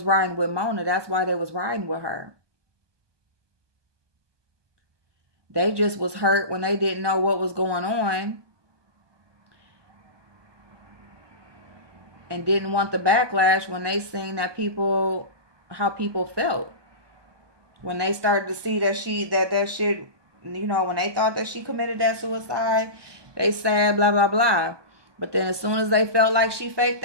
riding with Mona, that's why they was riding with her. They just was hurt when they didn't know what was going on and didn't want the backlash when they seen that how people felt. When they started to see that that shit, when they thought that she committed that suicide, they said blah, blah, blah. But then as soon as they felt like she faked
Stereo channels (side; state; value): left; late; 1.2 ms